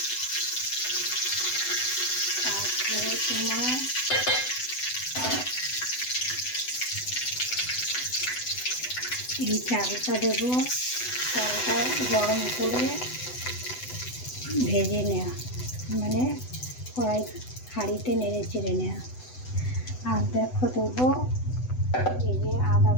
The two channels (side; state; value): right; late; 8.0 ms